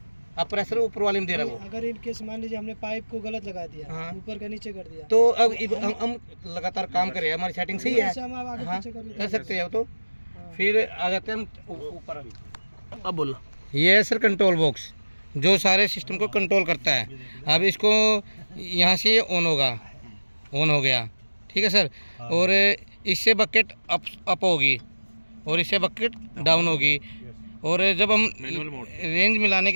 अब प्रेशर ऊपर वाले में दे रहा है वो। अगर इन केस मान लीजिए हमने पाइप को गलत लगा दिया, हाँ। ऊपर का नीचे कर दिया, तो अब हम लगातार काम करें, हमारी सेटिंग सही है, हम आगे हाँ, पीछे कर सकते हैं। तो फिर आ जाते हैं हम ऊपर। अब बोलो, ये है सर कंट्रोल बॉक्स, जो सारे सिस्टम को कंट्रोल करता है। अब इसको यहाँ से ऑन होगा, ऑन हो गया, ठीक है सर। और इससे बकेट अप होगी और इससे बकेट डाउन होगी। और जब हम रेंज मिलाने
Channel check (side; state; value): both; inverted; correlation -1.00